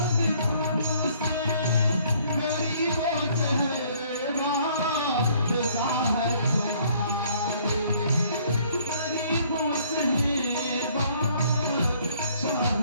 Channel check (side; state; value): both; inverted; correlation -0.60